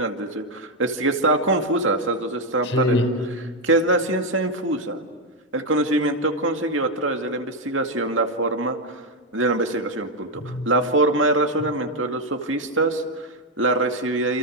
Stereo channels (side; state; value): both; normal; correlation 0.04